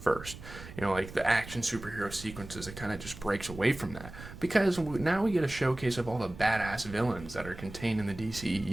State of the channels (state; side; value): noise; right; rumble, 14 dB below the sound